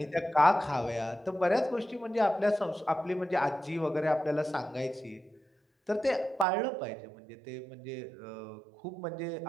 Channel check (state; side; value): drops out; left; at 6.5 s